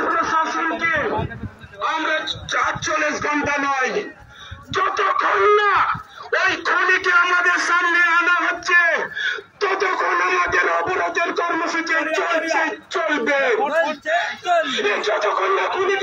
প্রশাসনকে আমরা ৪৪ ঘন্টা নয়, যতক্ষণ না ওই খনিকে আমাদের সামনে আনা হচ্ছে ততক্ষণ আমাদের অবরোধের কর্মসূচি চলছে, চলবে। যতক্ষণ না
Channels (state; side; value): identical; both; correlation 1.00